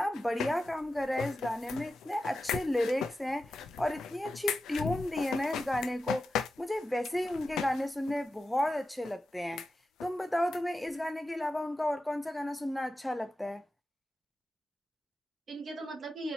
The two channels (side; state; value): both; normal; correlation 0.91